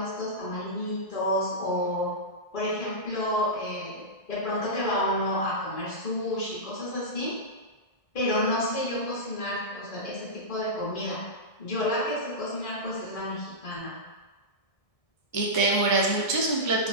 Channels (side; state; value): right; late; 1.6 ms